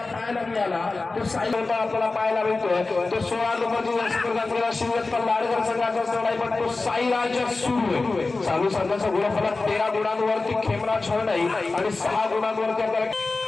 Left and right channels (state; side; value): quieter; right; 3.6 dB